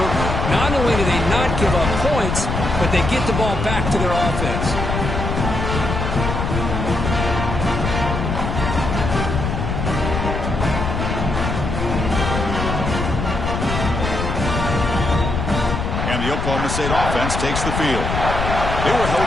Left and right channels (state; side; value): noise; left; rumble, 2 dB below the sound